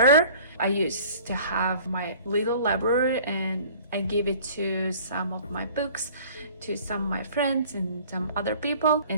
I used to have my little library and I gave it to some of my books, to some of my friends and some other people,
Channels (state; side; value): inverted; both; correlation -0.48